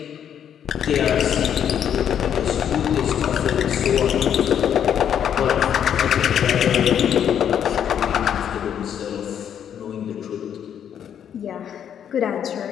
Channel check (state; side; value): quieter; right; 9.1 dB